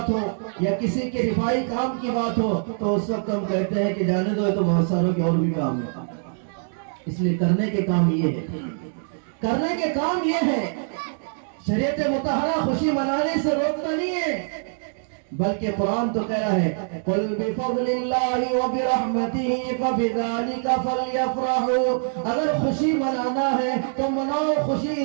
ہو یا کسی کے رفائی کام کی بات ہو تو اس وقت ہم کہتے ہیں کہ جانے دو, تو بہت ساروں کے اور بھی کام ہے. اس لیے کرنے کے کام یہ ہے, کرنے کے کام یہ ہے. شریعت مطہرہ خوشی منانے سے روکتا نہیں ہے, بلکہ قرآن تو کہہ رہا ہے قُلْ بِفَضْلِ اللَّهِ وَبِرَحْمَتِهِ فَبِذَلِكَ فَلْيَفْرَحُوا. اگر خوشی منانا ہے تو مناؤ خوشی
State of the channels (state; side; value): silent; left; digital silence